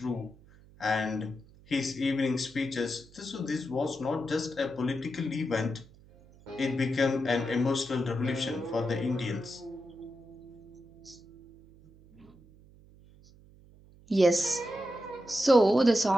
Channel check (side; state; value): right; noise; hum, 25 dB below the sound